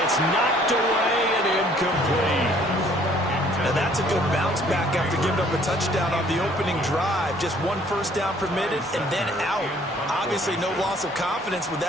it's knocked away and incomplete. And that's a good bounce back after giving up a touchdown on the opening drive. Just 1 first down permitted and then out. Obviously no loss of confidence with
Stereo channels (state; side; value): normal; both; correlation 0.59